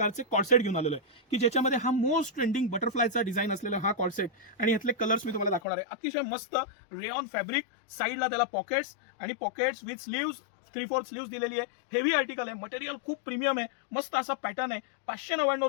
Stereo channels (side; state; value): right; drops out; at 5.6 s